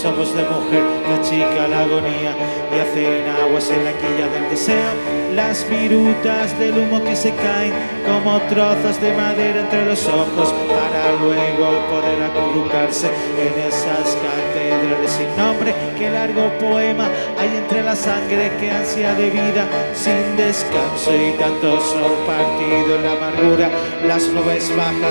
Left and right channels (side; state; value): both; inverted; correlation -1.00